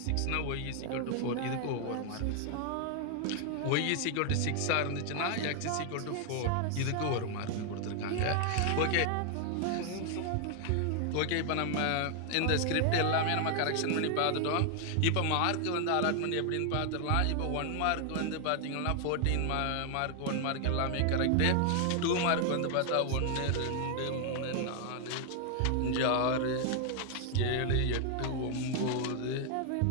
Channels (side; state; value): both; different; correlation 0.00